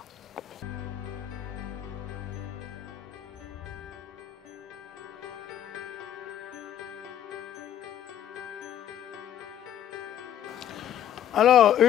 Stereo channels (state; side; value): quieter; right; 10.8 dB